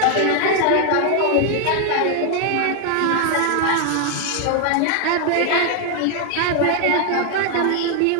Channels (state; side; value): different; both; correlation 0.01